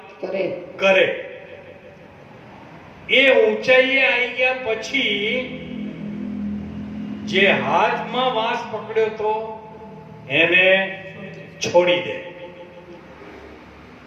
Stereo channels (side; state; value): both; identical; correlation 1.00